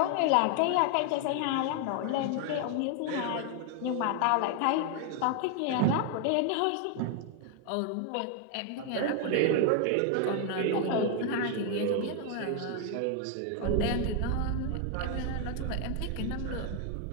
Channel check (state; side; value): different; both; correlation 0.01